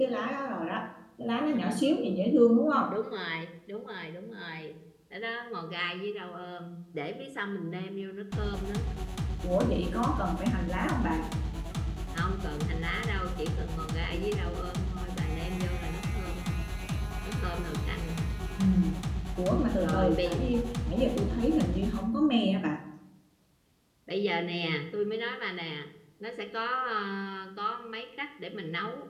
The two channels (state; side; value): identical; both; correlation 1.00